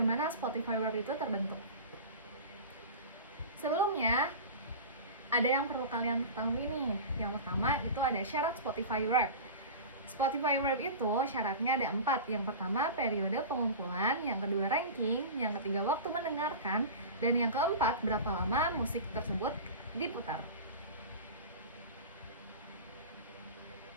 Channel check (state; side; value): inverted; both; correlation -0.31